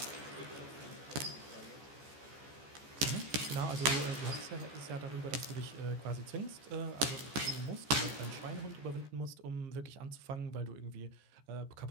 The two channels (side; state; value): left; late; 14 ms